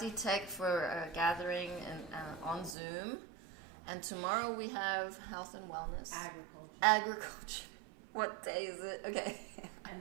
Tech for a gathering on Zoom. And tomorrow we have health and wellness. Agriculture. What day is it? Okay.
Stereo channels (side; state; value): left; drops out; at 2.8 s